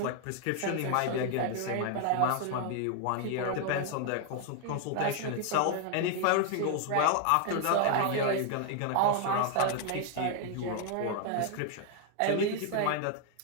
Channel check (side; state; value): both; different; correlation 0.00